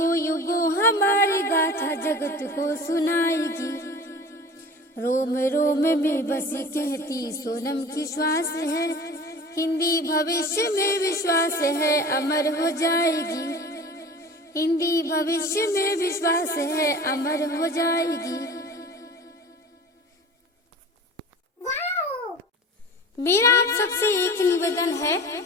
युगों हमारी गाथा जगत को सुनाएगी। रोम रोम में बसी कहती सोनम की श्वास है, हिंदी भविष्य में विश्वास है अमर हो जाएगी। हिंदी भविष्य में विश्वास है अमर हो जाएगी। मेरा आप सबसे एक निवेदन है,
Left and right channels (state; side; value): normal; both; correlation 0.39